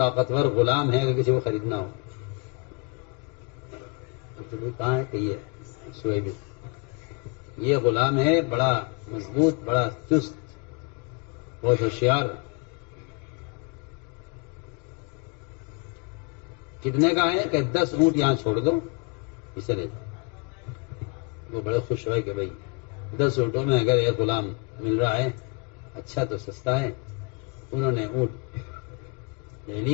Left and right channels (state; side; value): quieter; right; 30.9 dB